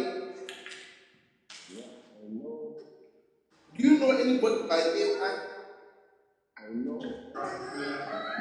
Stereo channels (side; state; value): both; identical; correlation 1.00